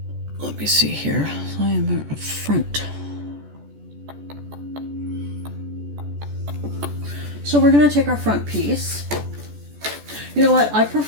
me see here. I am at front. So we're going to take our front piece. You know what? I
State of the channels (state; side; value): late; left; 14 ms